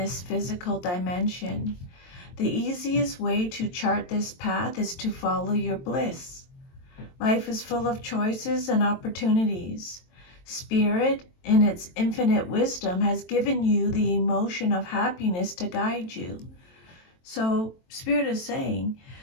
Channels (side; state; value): right; late; 23 ms